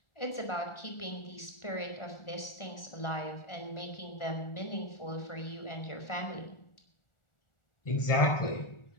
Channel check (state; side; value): late; right; 1.4 ms